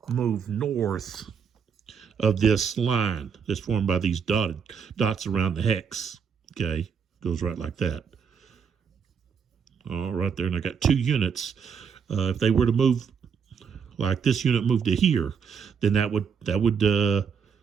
move north of this line that's formed by these dots around the hex, okay? Goes right like that. All right there, and I got 2 units. If they were to move, like this unit moved to here, then that would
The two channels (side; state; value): left; quieter; 6.7 dB